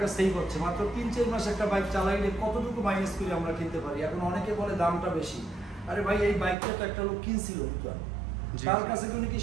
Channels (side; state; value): left; drops out; at 6.6 s